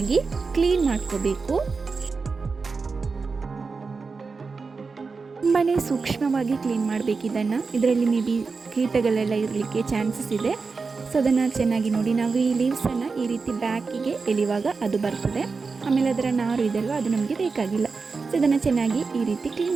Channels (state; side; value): quieter; left; 4.6 dB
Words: ಕ್ಲೀನ್ ಮಾಡ್ಕೋಬೇಕು. ತುಂಬಾ ಸೂಕ್ಷ್ಮವಾಗಿ ಕ್ಲೀನ್ ಮಾಡಬೇಕು ಇದನ್ನು. ಇದರಲ್ಲಿ ಮೇ ಬಿ ಕೀಟಗಳೆಲ್ಲ ಇರಲಿಕ್ಕೆ ಚಾನ್ಸಸ್ ಇದೆ. ಸೊ ಅದನ್ನು ಚೆನ್ನಾಗಿ ನೋಡಿ. ನಾವು ಈ ಲೀವ್ಸನ್ನು ಈ ರೀತಿ ಬ್ಯಾಕಿಗೆ ಎಳೆಯುವಾಗ ಅದು ಬರ್ತದೆ. ಆಮೇಲೆ ಅದರ ನಾರು ಇದೆಯಲ್ವ, ಅದು ನಮಗೆ ಬೇಕಾಗಿಲ್ಲ. ಸೊ ಇದನ್ನು ಚೆನ್ನಾಗಿ ಈ ರೀತಿ